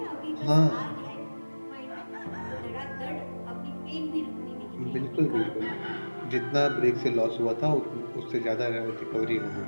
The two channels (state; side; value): inverted; both; correlation -1.00